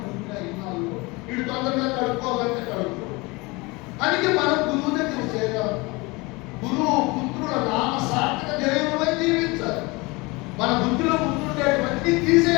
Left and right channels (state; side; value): quieter; right; 24.9 dB